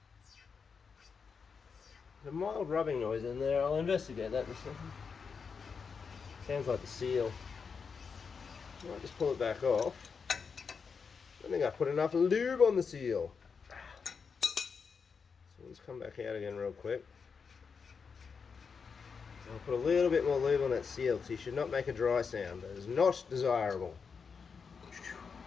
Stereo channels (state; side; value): quieter; right; 5.7 dB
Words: There's a mild rubbing noise in there. I'll investigate that in a second. Sounds like the seal. I might just pull it back off. I think I put enough lube on the seal. So let's come back out again real quick. I'll put a little bit more lube on that seal because you should not make a dry sound. That is not desirable.